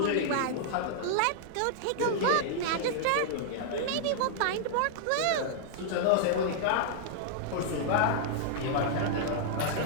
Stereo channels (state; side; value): different; both; correlation -0.01